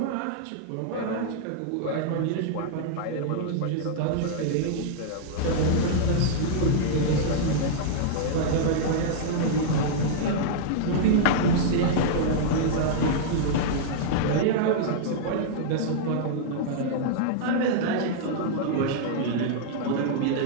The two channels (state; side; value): different; both; correlation -0.01